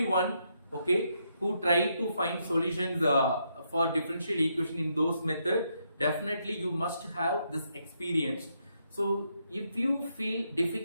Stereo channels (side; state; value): both; inverted; correlation -0.78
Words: okay, who try to find solutions for differential equation in those method, definitely you must have this experience. So if you feel